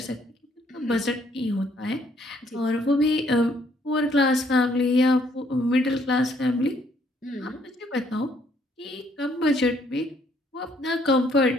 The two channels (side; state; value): both; normal; correlation 0.67